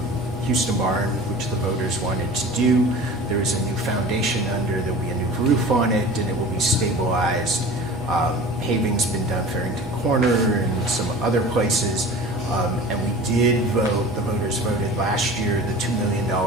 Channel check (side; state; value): both; normal; correlation 0.39